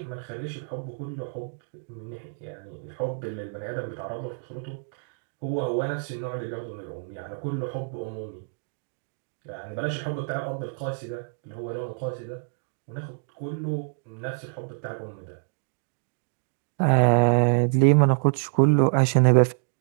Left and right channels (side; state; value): left; silent; digital silence